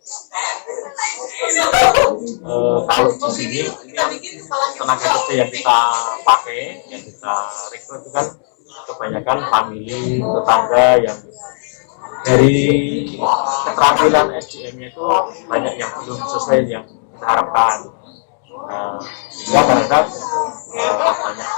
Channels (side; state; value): right; silent; digital silence